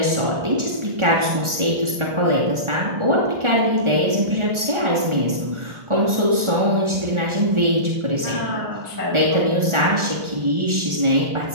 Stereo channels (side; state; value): left; late; 1.4 ms